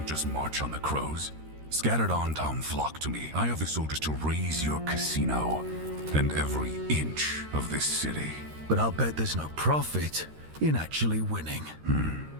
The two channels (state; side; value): late; left; 13 ms